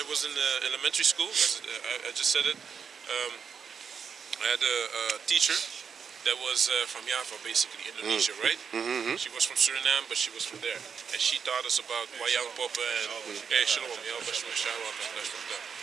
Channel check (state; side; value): quieter; left; 6.5 dB